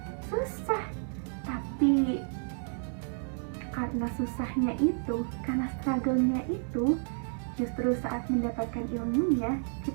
susah. Tapi karena susahnya itu, karena struggle-nya itu, justru saat mendapatkan ilmunya,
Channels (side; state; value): left; silent; 57 dB below the other